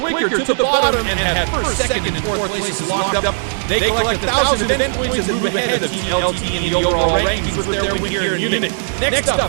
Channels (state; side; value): silent; left; digital silence